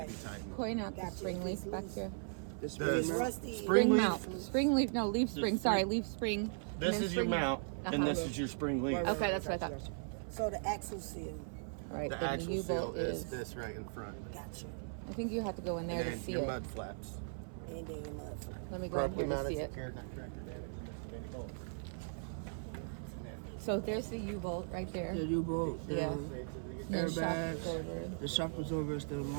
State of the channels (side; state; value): left; silent; 52 dB below the other